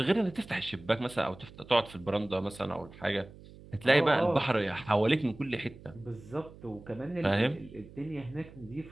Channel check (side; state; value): right; noise; hum, 19 dB below the sound